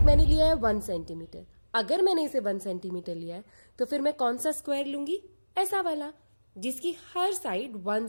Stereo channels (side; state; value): both; inverted; correlation -1.00